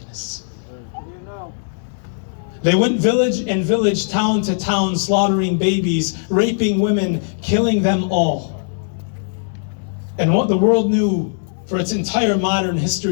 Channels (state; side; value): silent; right; digital silence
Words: They went village and village, town to town, slaughtering babies, raping women, killing them all. And what the world knew for its entire modern